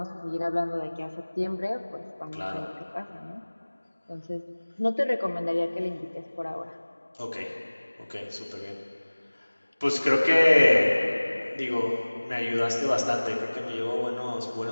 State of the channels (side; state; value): both; inverted; correlation -1.00